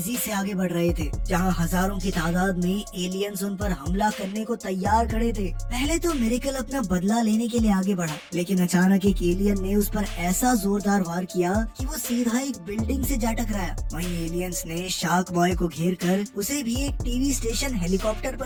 से आगे बढ़ रहे थे, जहां हजारों की तादाद में एलियंस उन पर हमला करने को तैयार खड़े थे। पहले तो मिरेकल अपना बदला लेने के लिए आगे बढ़ा, लेकिन अचानक एक एलियन ने उस पर ऐसा जोरदार वार किया कि वो सीधा एक बिल्डिंग से जा टकराया। वहीं एलियंस ने शार्क बॉय को घेर कर उसे भी एक टीवी स्टेशन हेलीकॉप्टर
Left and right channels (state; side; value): identical; both; correlation 1.00